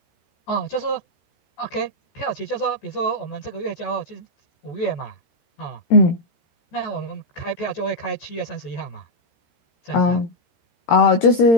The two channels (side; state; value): right; late; 13 ms